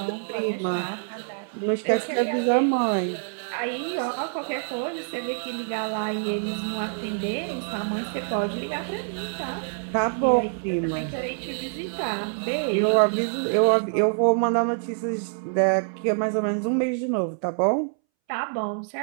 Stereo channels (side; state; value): left; silent; 61 dB below the other